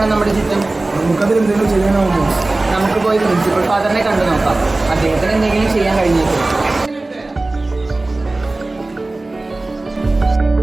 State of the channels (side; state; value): left; quieter; 3.0 dB